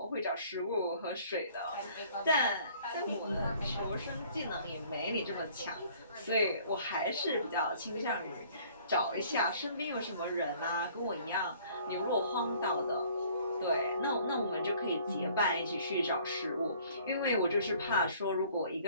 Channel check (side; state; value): both; inverted; correlation -0.55